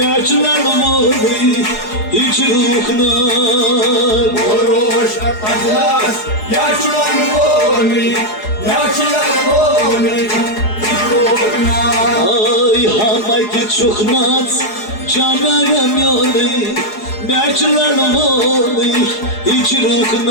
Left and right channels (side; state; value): right; late; 4.8 ms